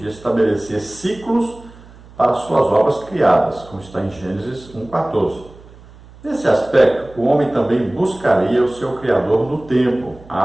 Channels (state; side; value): noise; right; hum, 22 dB below the sound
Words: estabelecer ciclos para suas obras criadas, como está em Gênesis 1,14. Nesse aspecto, o homem também buscaria o seu Criador no tempo,